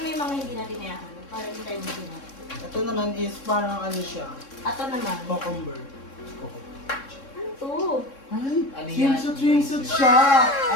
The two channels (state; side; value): late; right; 3.6 ms